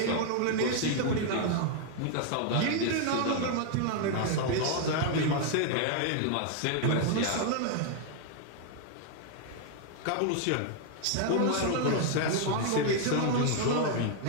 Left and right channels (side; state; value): both; different; correlation 0.00